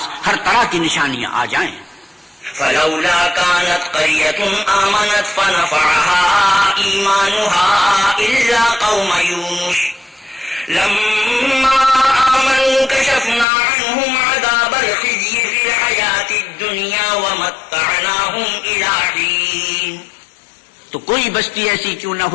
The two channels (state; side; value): drops out; right; at 13.5 s